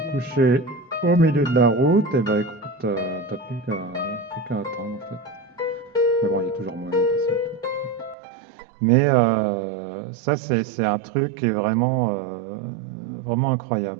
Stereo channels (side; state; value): left; drops out; at 8.2 s